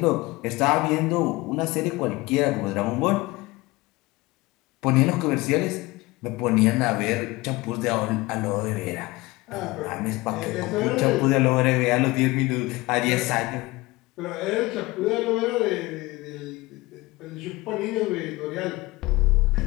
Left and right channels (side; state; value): right; quieter; 21.1 dB